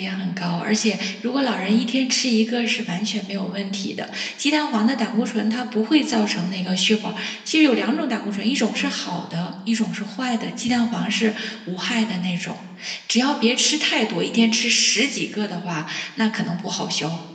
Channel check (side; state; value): both; identical; correlation 1.00